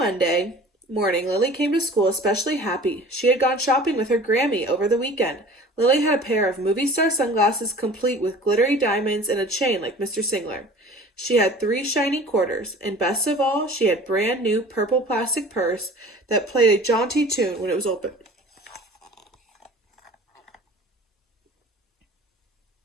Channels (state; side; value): normal; both; correlation 0.44